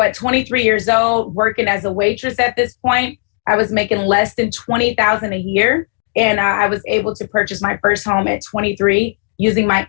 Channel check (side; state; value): right; silent; digital silence